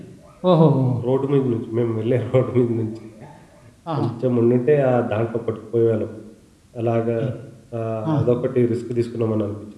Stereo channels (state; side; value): identical; both; correlation 1.00